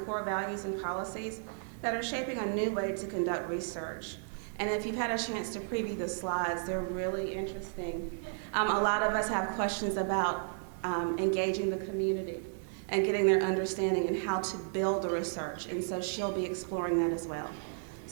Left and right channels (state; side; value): silent; left; digital silence